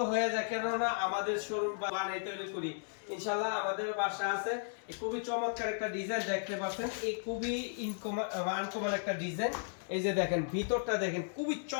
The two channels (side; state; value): right; silent; digital silence